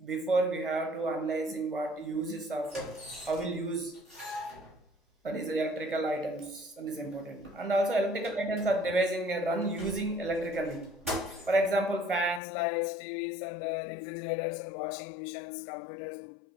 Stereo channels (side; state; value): right; drops out; at 12.4 s